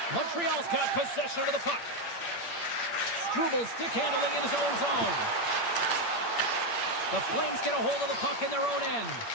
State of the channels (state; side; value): late; right; 8.7 ms